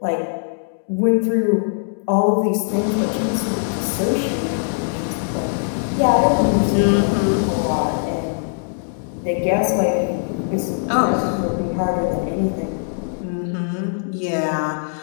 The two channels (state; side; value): silent; right; 65 dB below the other